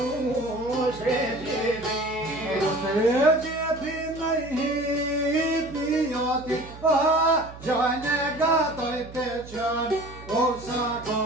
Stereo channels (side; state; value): right; noise; hum, 16 dB below the sound